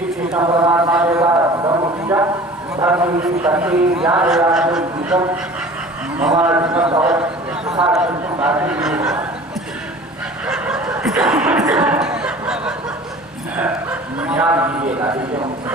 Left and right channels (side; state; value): both; normal; correlation 0.43